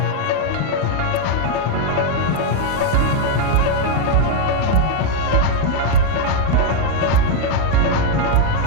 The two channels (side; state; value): both; different; correlation 0.01